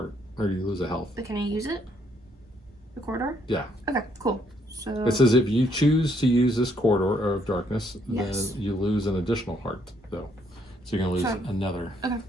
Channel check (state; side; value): normal; both; correlation 0.70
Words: or you lose a health. But can I use it? The corridor? Yeah. Okay, cool. So It says if you choose to use this Corridor of Darkness, Yes. then you lose an additional heart, though. So you're gonna lose Fine. another. okay,